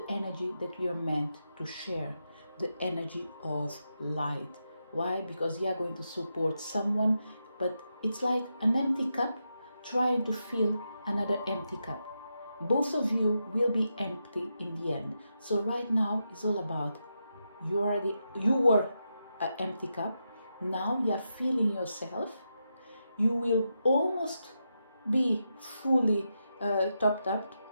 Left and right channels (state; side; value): inverted; both; correlation -0.86